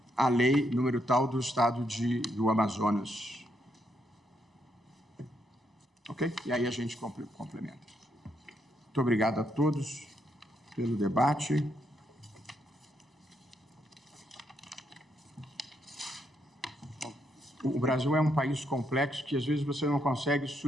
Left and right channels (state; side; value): normal; both; correlation 0.77